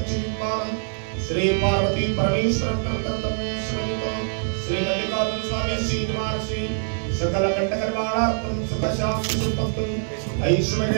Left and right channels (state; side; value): silent; left; 62 dB below the other